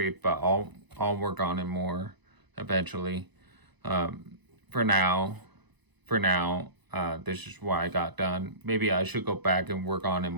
but I'll work on it more eventually. For now, this is what I got done. Maybe I should go back and work on it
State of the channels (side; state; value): left; late; 1.0 ms